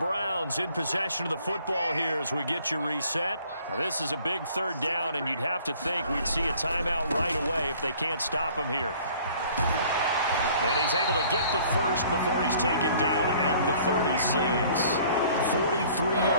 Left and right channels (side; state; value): both; inverted; correlation -0.55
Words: in possession of the football here as we get you reset. Now this is a big 3rd down, and you'd have to think we'd see a timeout right away if they can't stop him here. And he's able to get the first before he's taken down at the 36. 43